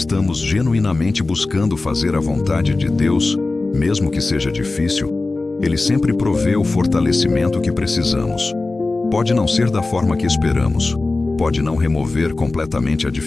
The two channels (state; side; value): quieter; right; 3.4 dB